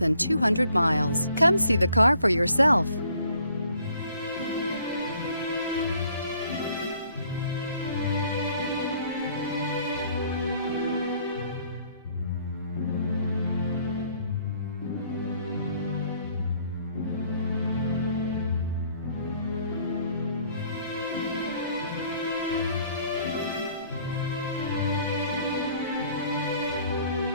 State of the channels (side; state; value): both; inverted; correlation -0.61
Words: 200 miles. Come see the car for yourself.